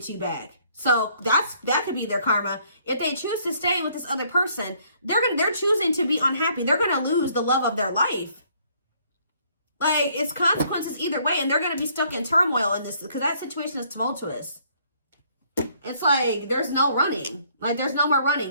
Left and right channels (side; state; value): both; inverted; correlation -0.64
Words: you back. So that could be their karma. If they choose to stay with this other person, they're choosing to be unhappy. They're going to lose the love of their life. Like, it's consequences either way, and they're going to be stuck in turmoil in this, because that situation is tumultuous. It's like there's no running. Like, there's no more